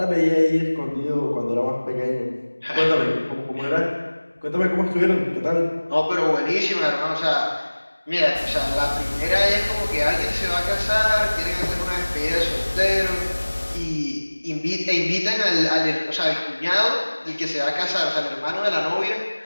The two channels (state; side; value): inverted; both; correlation -1.00